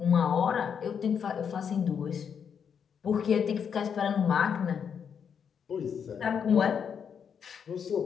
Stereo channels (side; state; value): right; quieter; 7.3 dB